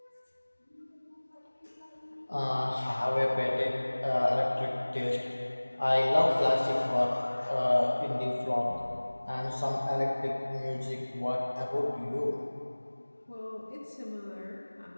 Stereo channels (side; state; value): both; inverted; correlation -1.00